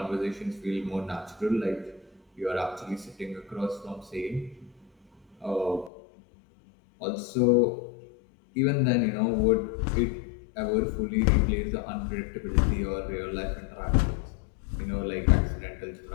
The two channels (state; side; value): drops out; right; at 5.9 s